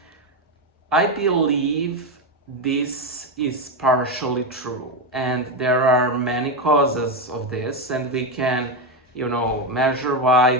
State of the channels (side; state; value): both; normal; correlation 0.11